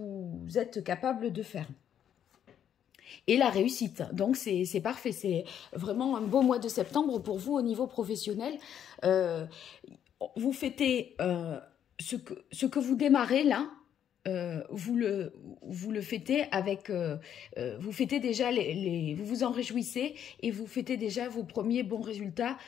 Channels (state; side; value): quieter; right; 9.5 dB